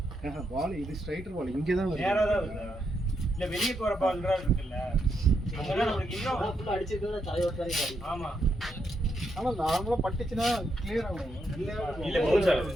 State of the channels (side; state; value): both; normal; correlation 0.80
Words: பால் இது ஸ்ட்ரைட்டர் பால் இங்கே தான் நேரா தான் வருது இல்ல வெளியே போற பால்ன்றா இருக்குல்ல அங்கதான் நம்மளுக்கு இன்னும் ஃபுல்லாக அடிச்சிருக்கா தலைவர் தானே ஆடி ஆமா ஆனா நார்மலா பட்டுச்சுன்னா கிளியர் ஆகும் இல்ல போகுது